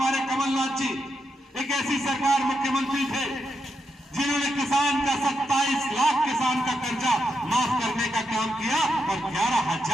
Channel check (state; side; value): normal; both; correlation 0.83